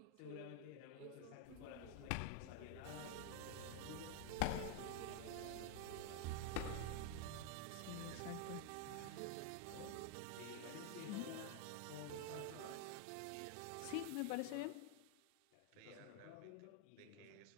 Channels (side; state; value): both; different; correlation 0.00